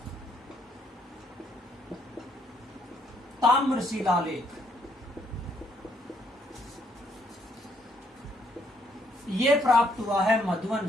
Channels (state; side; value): normal; both; correlation 0.70